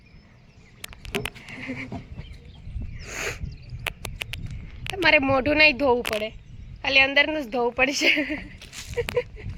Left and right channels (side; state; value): both; identical; correlation 1.00